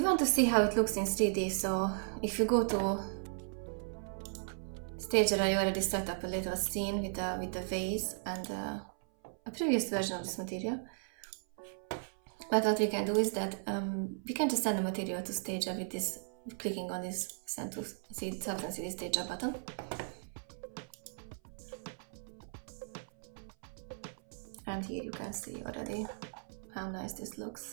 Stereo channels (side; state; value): left; silent; 54 dB below the other